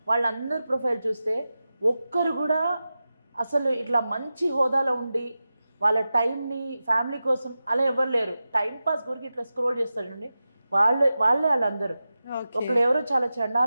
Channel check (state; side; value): inverted; both; correlation -0.93